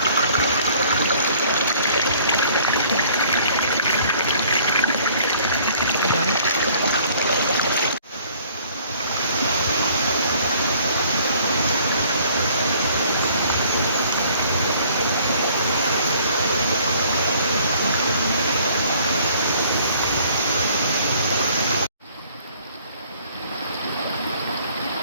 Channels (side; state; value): both; inverted; correlation -0.57